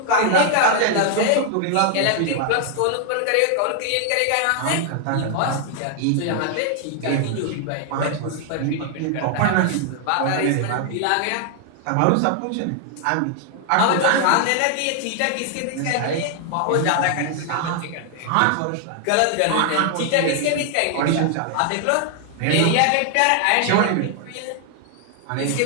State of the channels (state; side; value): different; both; correlation 0.00